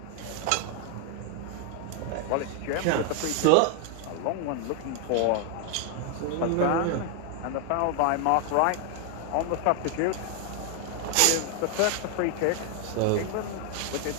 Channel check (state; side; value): different; both; correlation 0.00